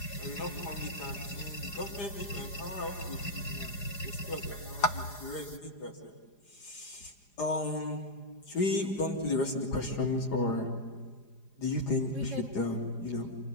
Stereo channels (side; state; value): right; late; 4.9 ms